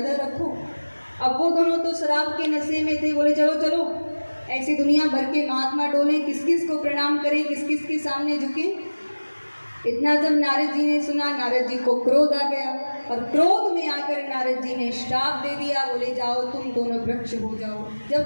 रखो। अब वो दोनों तो शराब के नशे में थे, बोले चलो चलो ऐसे दुनिया भर के महात्मा डोले, किस किस को प्रणाम करें, किस किस के सामने झुके। इतना जब नारद जी ने सुना, नारद जी को क्रोध आ गया और क्रोध में आकर नारद जी ने श्राप दे दिया। बोले जाओ तुम दोनों वृक्ष हो जाओ,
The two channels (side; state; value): both; inverted; correlation -1.00